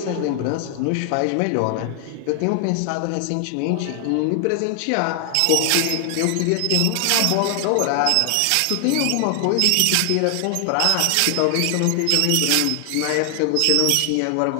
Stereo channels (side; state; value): both; different; correlation 0.00